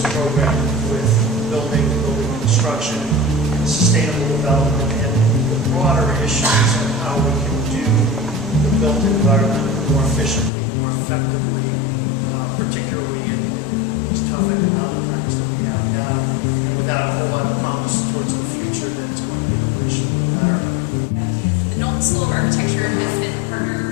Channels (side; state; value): right; drops out; at 10.5 s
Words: with building construction, sustainable development, and the broader issues of how we can do the built environment more efficiently, more effectively, particularly in these tough economic times that we have now, and without a whole lot of promise towards the future that's going to be appreciably better. The Knowlton School of Architecture has been partnered